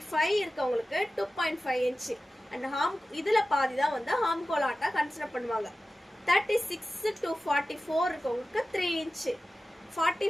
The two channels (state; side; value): normal; both; correlation 0.95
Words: இருக்கவங்களுக்கு 2.5 இன்ச்சு. அண்ட் இதுல பாதி தான் வந்து ஹார்ம்கோல் ஹார்ட்டா கன்சிடர் பண்ணுவாங்க. 36 to 44 இருக்கவங்களுக்கு 3 இன்ச்சு.